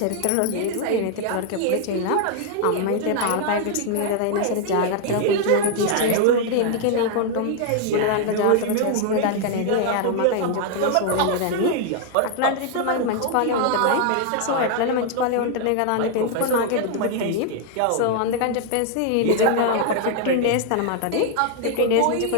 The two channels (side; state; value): both; different; correlation 0.00